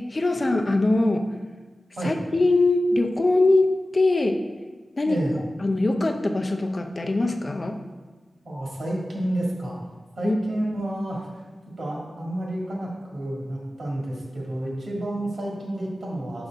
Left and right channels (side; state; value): both; normal; correlation 0.95